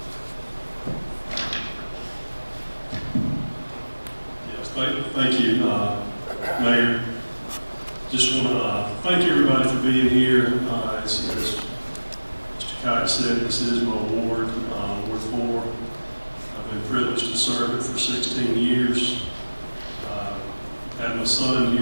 Yes, thank you, Mayor. Just want to thank everybody for being here. As Kite said, this is my ward, Ward 4. I've been privileged to serve it for 16 years. I had my son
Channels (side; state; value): both; inverted; correlation -1.00